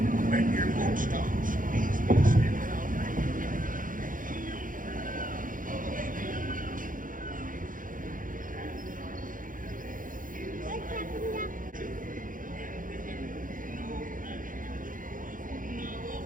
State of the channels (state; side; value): late; left; 0.39 ms